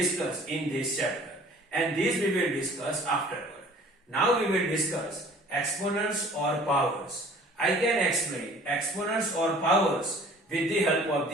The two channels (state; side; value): normal; both; correlation 0.50